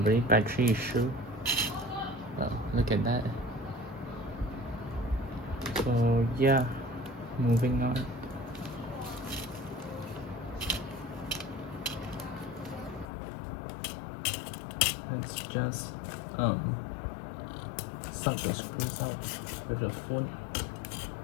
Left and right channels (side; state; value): right; drops out; at 13.1 s